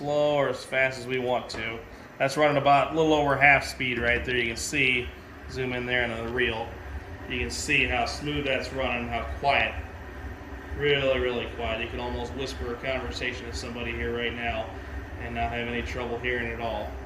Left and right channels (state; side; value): identical; both; correlation 1.00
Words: or as fast as we want to. That's running about a little over half speed right there. You can see, zoom in there into the reel. You can see how smooth that's running, how quiet. Really, really quiet. You can almost whisper a conversation to somebody here right now and not have any trouble hearing it at all.